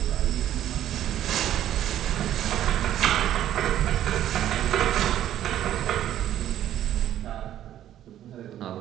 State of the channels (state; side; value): quieter; left; 11.8 dB